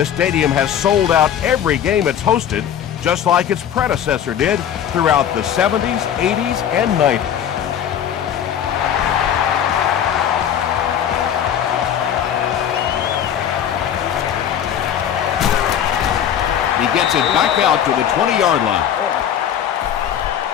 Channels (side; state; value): right; quieter; 9.5 dB